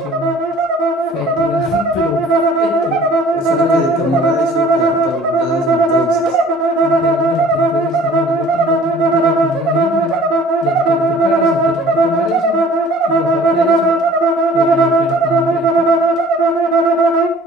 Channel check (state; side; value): normal; both; correlation 0.51